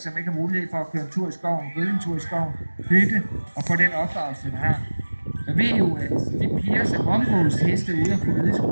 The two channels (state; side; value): inverted; both; correlation -1.00